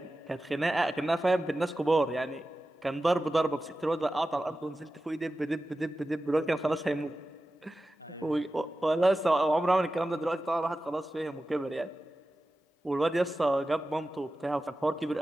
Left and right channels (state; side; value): normal; both; correlation 0.94